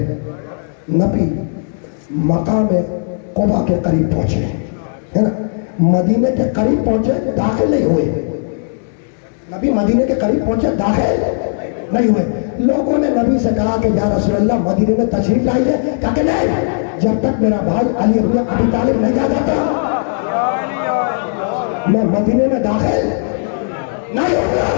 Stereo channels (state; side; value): silent; right; digital silence